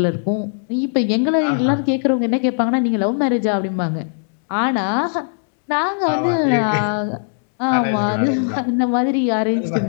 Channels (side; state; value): right; silent; 67 dB below the other